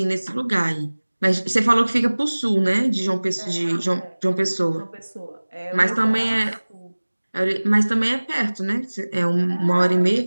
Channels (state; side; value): inverted; both; correlation -1.00